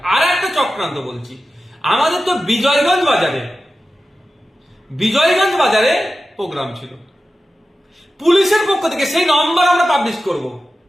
আর একটা চক্রান্ত বলছি, আমাদের তো বিজয়গঞ্জ বাজারে প্রোগ্রাম ছিল, পুলিশের পক্ষ থেকে সেই নম্বর আমরা পাবলিশ করব,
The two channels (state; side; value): normal; both; correlation 0.93